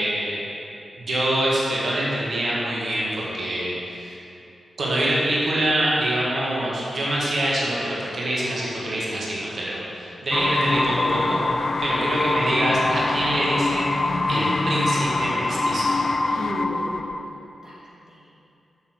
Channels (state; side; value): normal; both; correlation 0.90